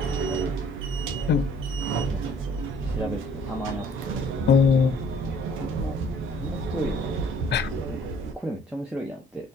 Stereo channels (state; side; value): normal; both; correlation 0.57